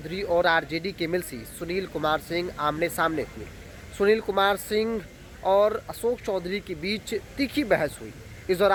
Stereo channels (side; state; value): both; identical; correlation 1.00